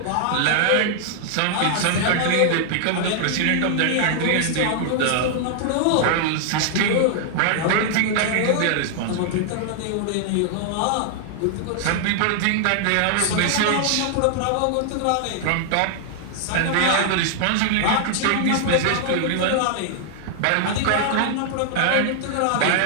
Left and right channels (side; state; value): both; different; correlation 0.00